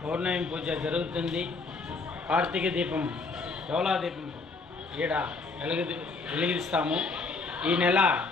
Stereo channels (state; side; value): quieter; right; 4.0 dB